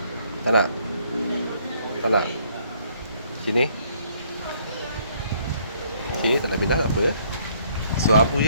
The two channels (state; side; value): inverted; both; correlation -0.65